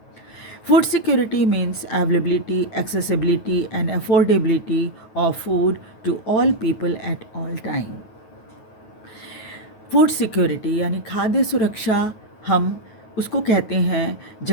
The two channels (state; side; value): late; right; 9.3 ms